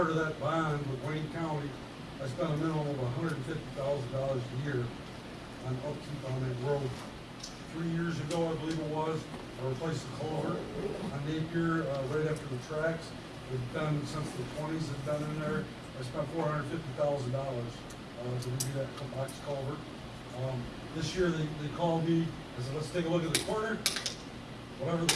of that bond with Wayne County, I spent a minimum of $150,000 a year on upkeep on that road. 3 years ago, I believe it was, I replaced the culvert on Napier, right after the tracks. We've done, since the 20s, have done in there. I spent $450,000 to redo that box culvert. This year, they called me, I said, let's take a look at the corner. Whatever the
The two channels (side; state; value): both; identical; correlation 1.00